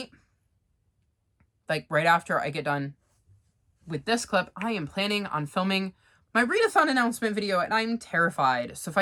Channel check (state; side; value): identical; both; correlation 1.00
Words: like right after I get done with this clip, I am planning on filming my readathon announcement video, and I'm terrified. So if I